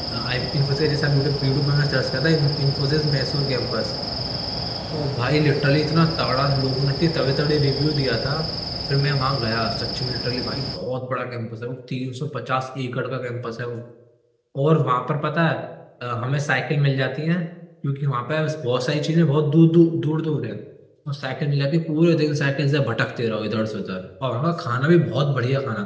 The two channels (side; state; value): both; identical; correlation 1.00